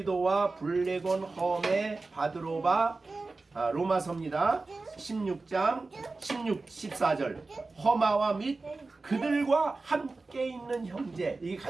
블레곤 험에 바드로바 로마서입니다. 16장 14절. 허마와 및 그들과 함께 있는 형제. 이게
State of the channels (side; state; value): left; quieter; 3.6 dB